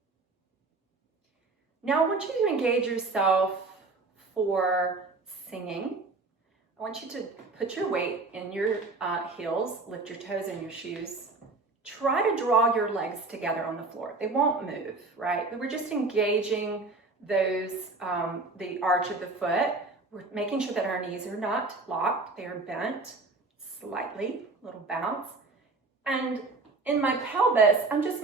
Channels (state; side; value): quieter; left; 3.6 dB